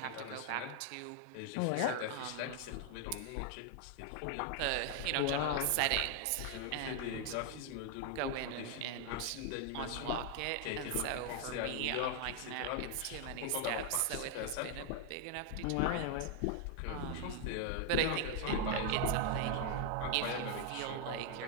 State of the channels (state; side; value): different; both; correlation 0.00